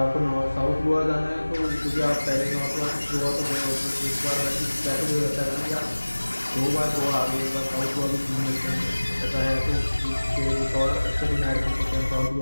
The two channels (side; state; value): both; inverted; correlation -1.00